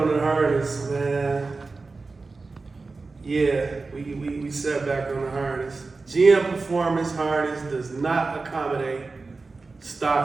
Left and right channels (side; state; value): left; quieter; 3.9 dB